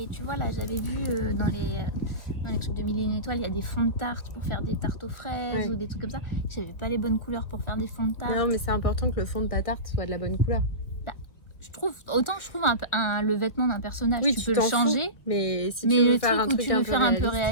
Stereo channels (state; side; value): late; right; 1.2 ms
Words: tu vois, là, j'avais vu dans les trucs de 1001 étoiles, il y a des fonds de tarte pour faire des tartes aux fraises ou des trucs comme ça. J'avais pas les bonnes couleurs pour faire des fonds de tarte. Non, mais c'est important que le fond de ta tarte soit de la bonne couleur. Je trouve le vêtement d'un personnage, tu peux le changer, mais si tu veux le faire truc un où truc tu veux faire un peu